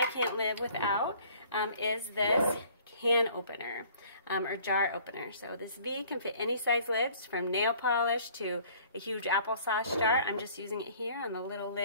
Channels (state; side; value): inverted; both; correlation -0.55